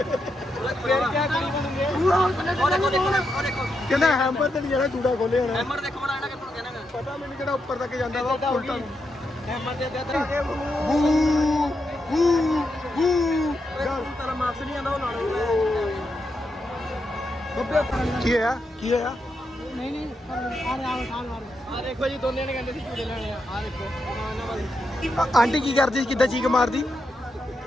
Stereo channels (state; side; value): normal; both; correlation 0.84